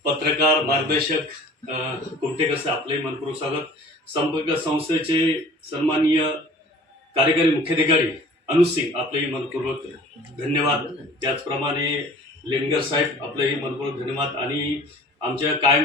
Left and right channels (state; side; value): normal; both; correlation 0.47